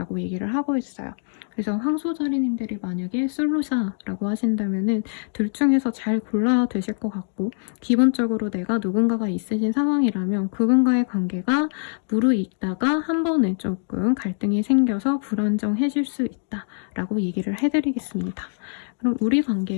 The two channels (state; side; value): silent; right; digital silence